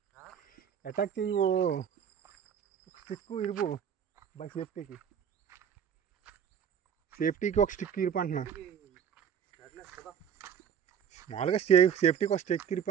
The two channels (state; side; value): quieter; left; 8.1 dB